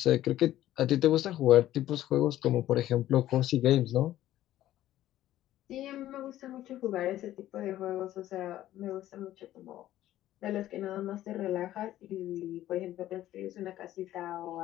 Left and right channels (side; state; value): right; quieter; 13.6 dB